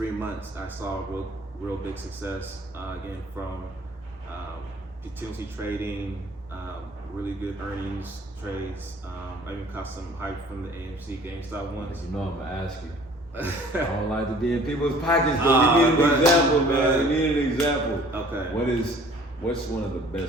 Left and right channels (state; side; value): normal; both; correlation 0.51